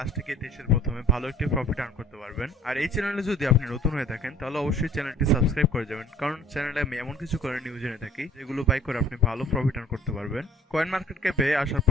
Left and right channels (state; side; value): normal; both; correlation 0.52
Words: থেকে 23 এর প্রথমে ভালো একটি প্রফিট আর্ন করতে পারবেন। আর এই চ্যানেলে যদি আপনি নতুন হয়ে থাকেন তাহলে অবশ্যই চ্যানেলটি সাবস্ক্রাইব করে যাবেন, কারণ চ্যানেলে আমি এমন কিছু কয়েন নিউজ এনে থাকি যেগুলো বাই করে আপনি ভালো প্রফিট আর্ন করতে পারবেন। কয়েন মার্কেট ক্যাপে আসার